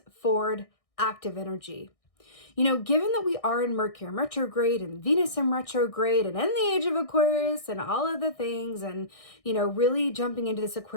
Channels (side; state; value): right; late; 1.6 ms